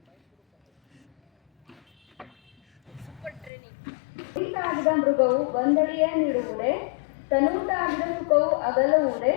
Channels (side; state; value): right; drops out; at 3.5 s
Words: ಮೃಗವು ಬಂದಡಿಯ ನೀಡುವುದೇ, ತನೂಟಾಗಿದ ಸುಖವು ಅಗಲುವುದೇ,